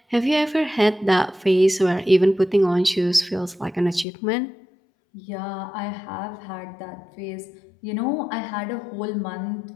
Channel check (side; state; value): right; drops out; at 4.0 s